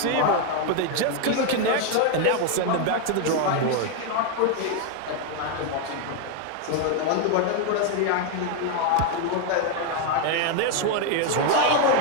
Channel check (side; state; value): both; different; correlation 0.01